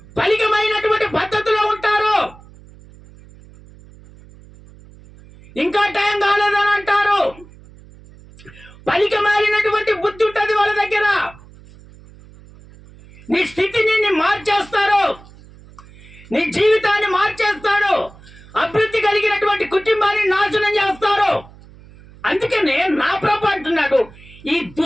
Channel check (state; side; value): noise; right; hum, 22 dB below the sound